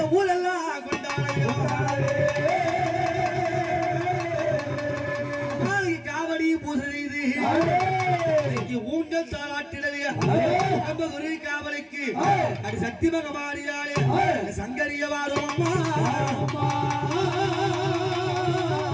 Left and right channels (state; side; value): identical; both; correlation 1.00